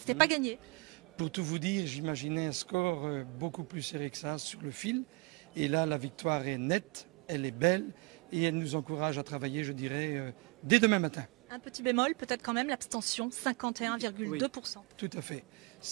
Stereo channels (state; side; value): quieter; left; 27.4 dB